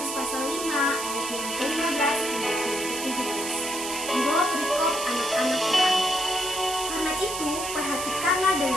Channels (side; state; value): right; noise; hiss, 6 dB below the sound